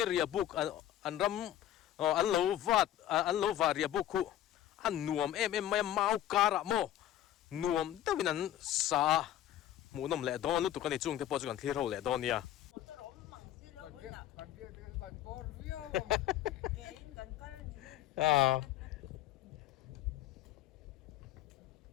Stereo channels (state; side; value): quieter; right; 12.4 dB